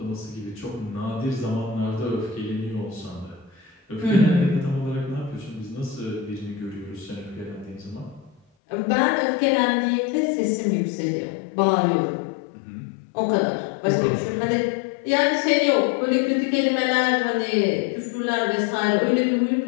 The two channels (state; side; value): drops out; right; at 8.4 s